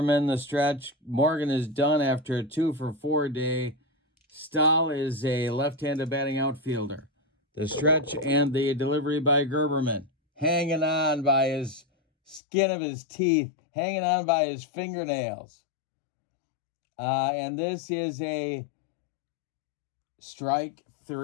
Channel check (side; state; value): right; drops out; at 12.4 s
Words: the stretch. Morgan is done after a 2 for 4 day. Stahl is a left-handed batting outfielder. The stretch and the delivery by Gerberman. Hanging on by his skin of his teeth. Hanging on by his fingernails. And this is a strike